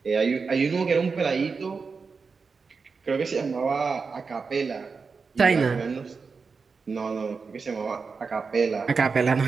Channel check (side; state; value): left; quieter; 4.9 dB